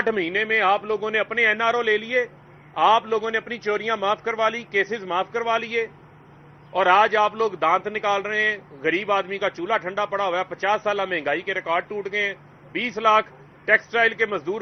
مہینے میں آپ لوگوں نے اپنے این آر او لے لیے، آپ لوگوں نے اپنی چوریاں معاف کروا لی، کیسز معاف کروا لیے، اور آج آپ لوگ دانت نکال رہے ہیں۔ غریب آدمی کا چولہا ٹھنڈا پڑا ہوا ہے، 50 سالہ مہنگائی کے ریکارڈ ٹوٹ گئے ہیں، 20 لاکھ ٹیکسٹائل کے مزدور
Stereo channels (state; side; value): identical; both; correlation 1.00